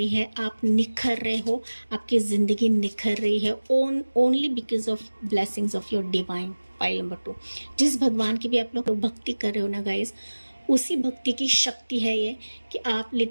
है, आप निखर रहे हो, आपकी ज़िंदगी निखर रही है only because of blessings of your divine. Pile number 2, जिस भगवान की भी आप लोग भक्ति कर रहे हो ना गाइस, उसी भक्ति की शक्ति है ये कि आप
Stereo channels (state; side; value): inverted; both; correlation -1.00